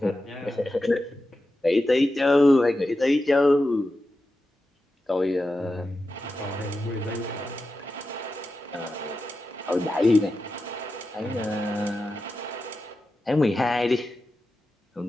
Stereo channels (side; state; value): both; normal; correlation 0.91